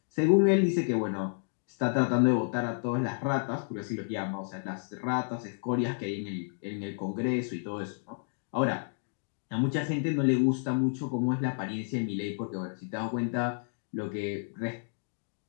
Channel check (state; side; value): silent; right; digital silence